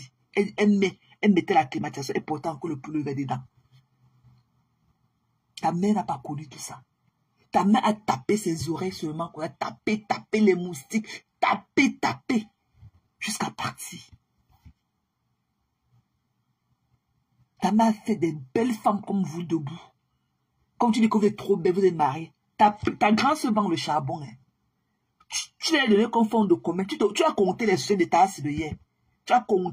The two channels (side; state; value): both; identical; correlation 1.00